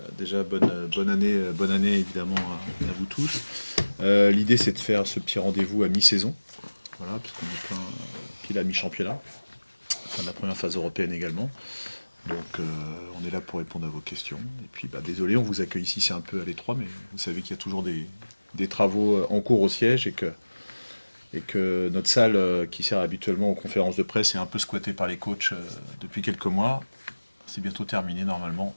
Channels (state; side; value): inverted; both; correlation -1.00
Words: Déjà bonne année évidemment à vous tous. L'idée c'est de faire ce petit rendez-vous à mi-saison, voilà, puisqu'on est pile à mi-championnat, fin de la première phase européenne également. Donc on est là pour répondre à vos questions. Et puis désolé, on vous accueille ici, c'est un peu à l'étroit, mais vous savez qu'il y a toujours des travaux en cours au siège et que notre salle qui sert habituellement aux conférences de presse est un peu squattée par les coachs depuis quelques mois. C'est bientôt terminé normalement.